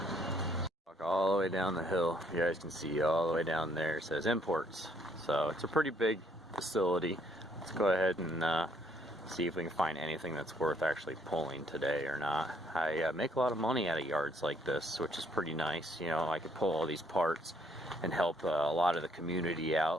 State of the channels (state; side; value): normal; both; correlation 0.66